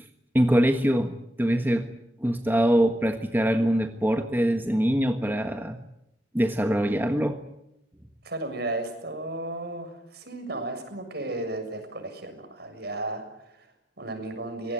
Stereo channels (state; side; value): normal; both; correlation 0.83